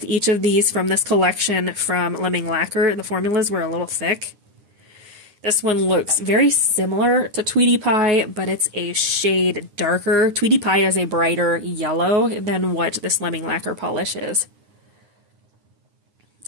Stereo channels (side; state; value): left; late; 9.7 ms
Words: each of these from this collection from Lemming Lacquer. The formulas were a little thick. This one looks very similar to Tweetie Pie, but it's a shade darker. Tweetie Pie is a brighter yellow than what this Lemming Lacquer polish is.